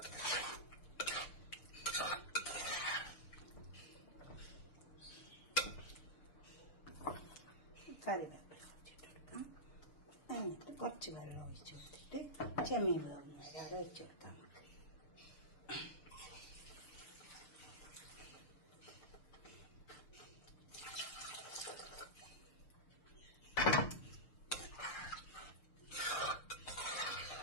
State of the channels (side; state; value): right; late; 6.7 ms